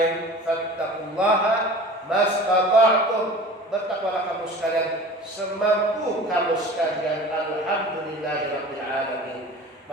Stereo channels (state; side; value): normal; both; correlation 0.40